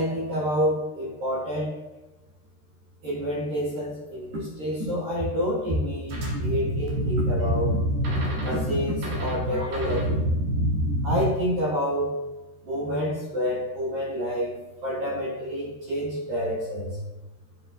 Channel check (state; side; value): late; left; 13 ms